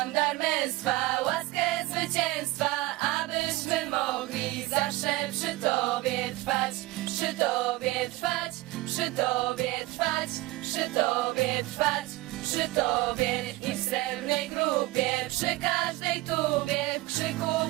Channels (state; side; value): quieter; left; 19.7 dB